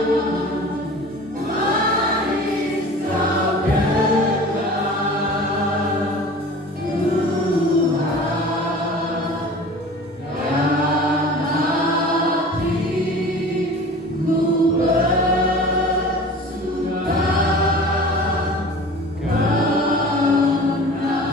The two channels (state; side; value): normal; both; correlation 0.40